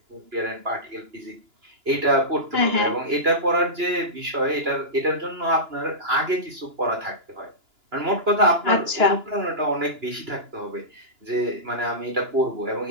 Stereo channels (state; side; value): late; left; 2.9 ms